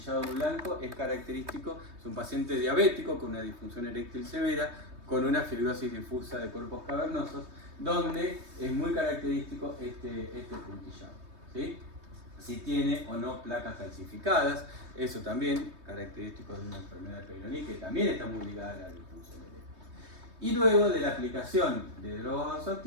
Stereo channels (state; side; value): late; left; 3.2 ms